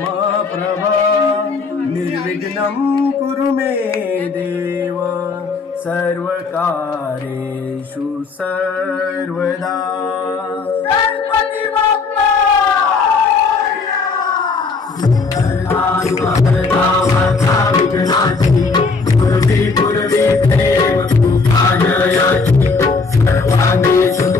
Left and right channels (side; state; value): right; quieter; 4.4 dB